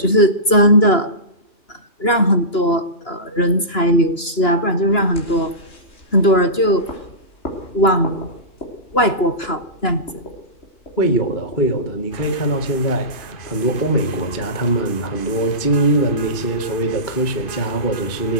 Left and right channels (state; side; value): late; right; 2.9 ms